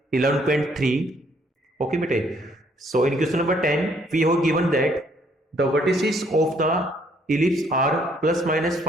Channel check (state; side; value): normal; both; correlation 0.66